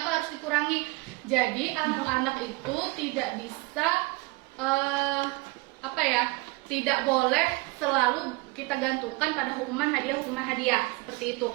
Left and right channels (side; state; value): left; quieter; 24.0 dB